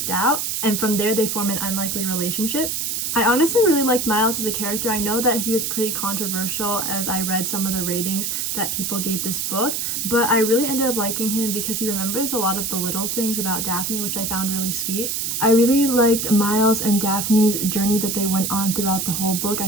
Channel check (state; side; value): noise; right; hiss, 1 dB below the sound